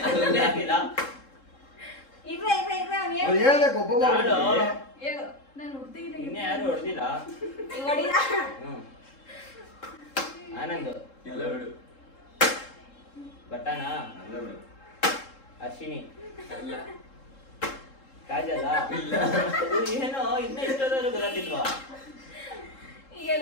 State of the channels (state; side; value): late; right; 3.7 ms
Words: ಹೇಳ್ಬೇಕು? ಒಬ್ಬೊಬ್ಬ ಇನ್ನೇ ಯಾರು ಹೊಡೆದಿಲ್ಲ. ಆನಂದ್ ಇಲ್ಲ ಬಿಡು. ಬಟ್ಟನಾ ಅಲ್ಲ ಬಿಡು. ಅಶ್ವಿನಿ ಅಲ್ಲ. ಕಾಜಲ್ಲ ಇಲ್ಲ. ಏನೋ ಇನ್ನ ಇಷ್ಟೋದ್ರು ಗೊತ್ತಿಲ್ವಾ?